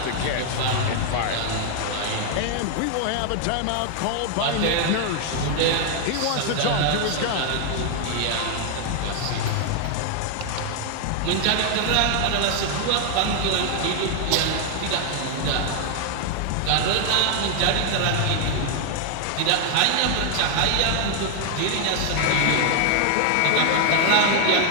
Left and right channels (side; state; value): both; different; correlation 0.00